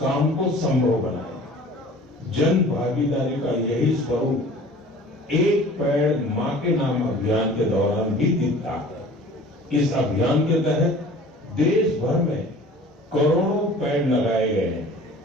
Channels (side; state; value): both; normal; correlation 0.45